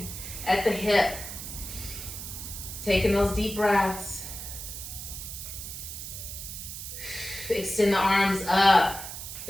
at the hip. Taking those deep breaths. Extend the arms up.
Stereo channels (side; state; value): right; noise; hiss, 8 dB below the sound